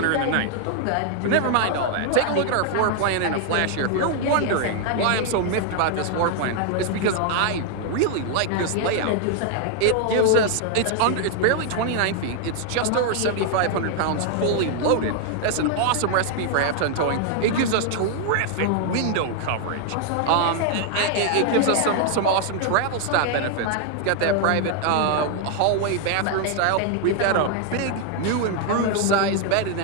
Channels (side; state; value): both; different; correlation 0.00